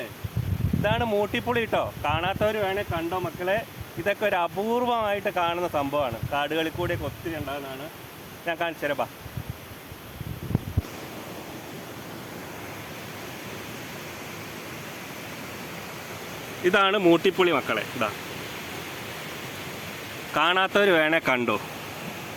ഇതാണ് മൂട്ടിപ്പുളി കേട്ടോ. കാണാത്തവർ വേണേൽ കണ്ടോ മക്കളെ. ഇതൊക്കെ ഒരു അപൂർവമായിട്ട് കാണുന്ന സംഭവമാണ്. കാടുകളിൽ കൂടെയൊക്കെ ഒത്തിരി ഉണ്ടാകുന്നതാണ്. ഞാൻ കാണിച്ചു തരാം, ബാ. ഇതാണ് മൂട്ടിപ്പുളി മക്കളെ. ഇതാ കാണാത്തവർ വേണേ കണ്ടോ,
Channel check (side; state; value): both; identical; correlation 1.00